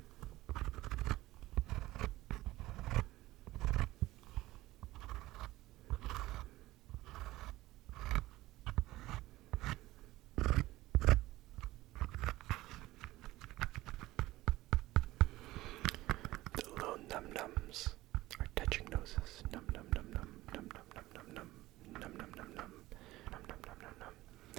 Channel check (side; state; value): left; quieter; 17.5 dB